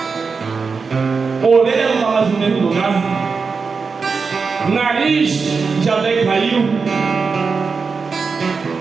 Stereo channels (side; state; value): left; quieter; 5.0 dB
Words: Orelha não está mais no mesmo lugar. Nariz já decaiu.